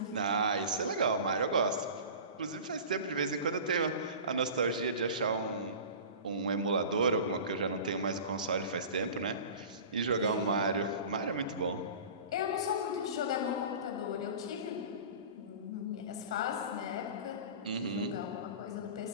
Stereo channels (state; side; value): inverted; both; correlation -0.37